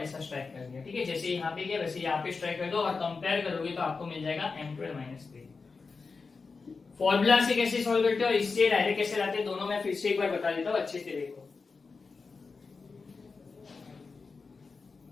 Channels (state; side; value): quieter; right; 4.5 dB